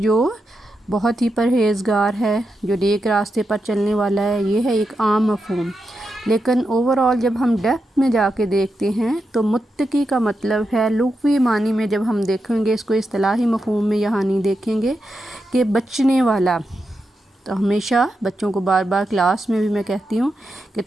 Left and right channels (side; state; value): both; normal; correlation 0.87